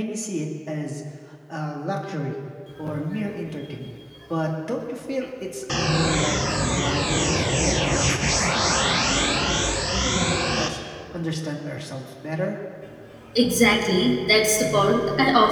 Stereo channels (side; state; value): both; identical; correlation 1.00